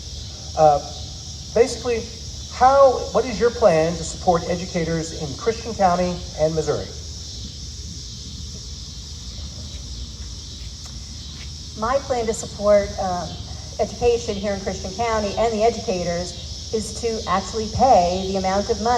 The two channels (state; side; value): identical; both; correlation 1.00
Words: Basically, what is your plan to support educators in Christian County and Missouri? My plan to support education here in Christian County and the educators is to actually pay the amount of